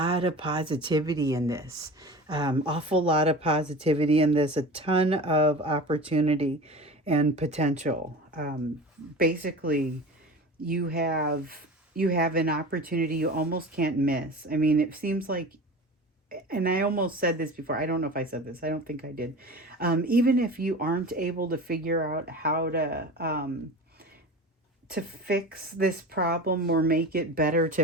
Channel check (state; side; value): normal; both; correlation 0.34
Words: of positivity in this, awful lot of positivity in this, a ton of opportunity and potential. Basically, you have an opportunity you almost can't miss. I mean, it seems like, and I almost said this before. I don't know if I said this. I don't think I did. Even if you aren't able to figure out how to fix this problem or make it better,